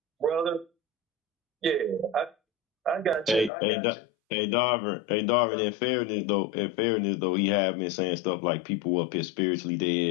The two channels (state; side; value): drops out; right; at 3.5 s